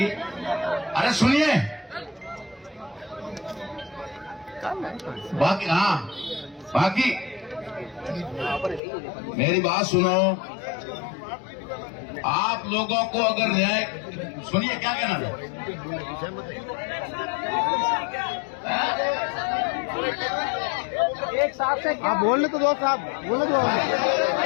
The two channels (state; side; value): drops out; right; at 8.8 s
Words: अरे सुनिए, बाकी मेरी बात सुनो। आप लोगों को अगर न्याय, सुनिए क्या कहना है? एक साहब से आप बोलने तो दो, साहब बोलने दो।